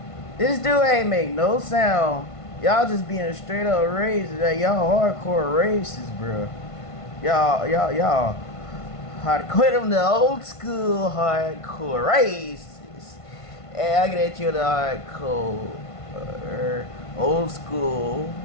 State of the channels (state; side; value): late; right; 1.5 ms